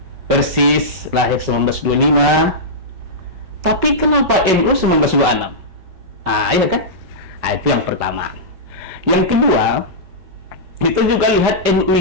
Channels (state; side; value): late; left; 5.3 ms